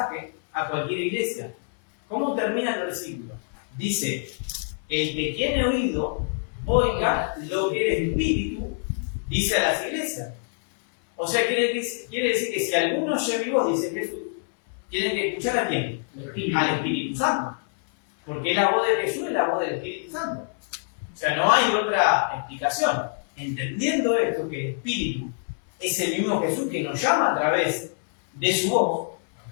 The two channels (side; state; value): right; silent; 61 dB below the other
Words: a cualquier iglesia. ¿Cómo termina el versículo? Dice, el que tiene oído, oiga lo que el Espíritu dice a las iglesias. O sea, quiere decir que si alguno oye mi voz, dice Jesús, tienen que escuchar a quién? Al Espíritu Santo. Porque la voz de Jesús es la voz del Espíritu Santo. O sea, no hay otra explicación. Entendiendo esto, que el Espíritu es el mismo Jesús que nos llama a través de su voz,